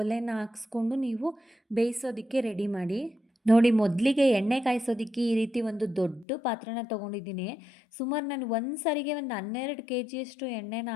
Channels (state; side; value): drops out; right; at 6.2 s